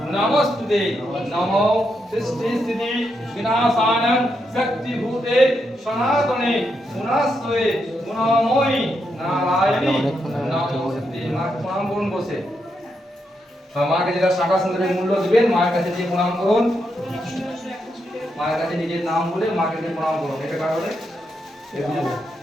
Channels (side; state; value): both; normal; correlation 0.82